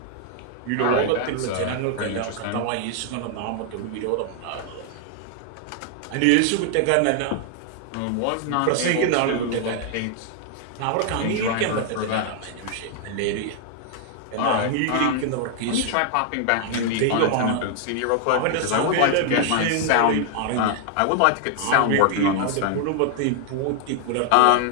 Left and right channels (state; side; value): different; both; correlation 0.00